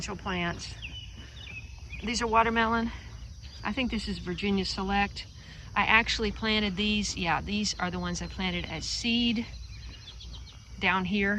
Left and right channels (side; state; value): both; identical; correlation 1.00